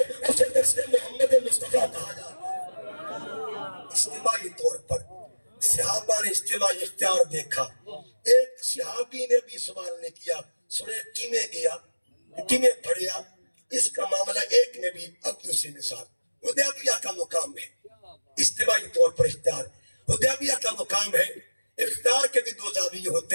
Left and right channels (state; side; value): inverted; both; correlation -1.00